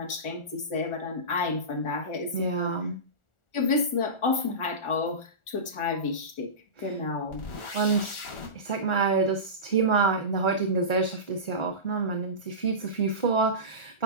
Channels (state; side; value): late; right; 1.4 ms